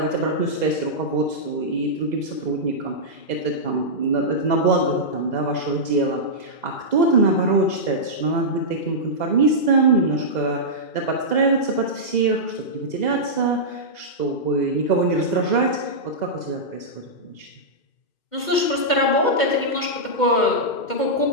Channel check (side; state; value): right; late; 2.1 ms